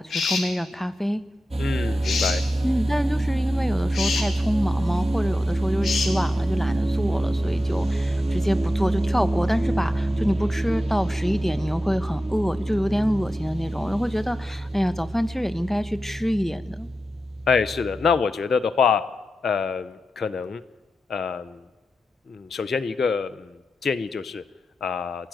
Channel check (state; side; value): normal; both; correlation 0.91